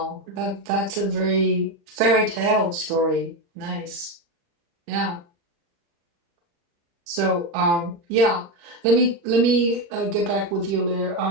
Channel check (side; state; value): left; late; 35 ms